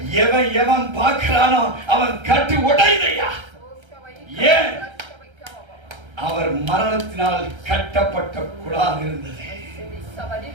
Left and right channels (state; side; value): late; left; 1.3 ms